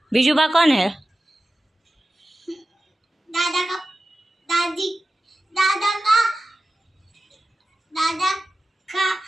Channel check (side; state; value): both; normal; correlation 0.94